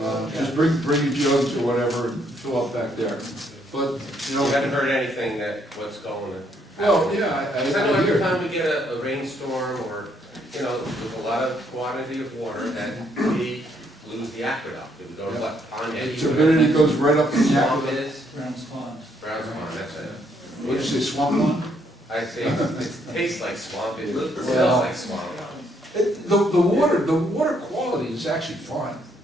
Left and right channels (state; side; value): normal; both; correlation 0.71